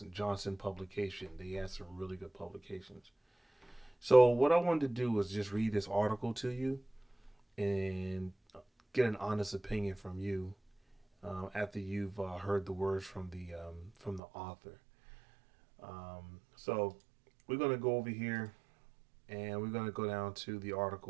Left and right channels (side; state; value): left; drops out; at 14.2 s